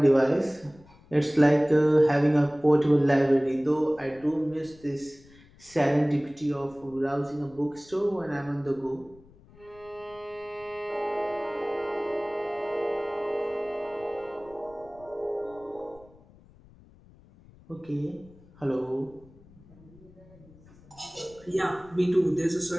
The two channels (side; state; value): left; noise; rumble, 25 dB below the sound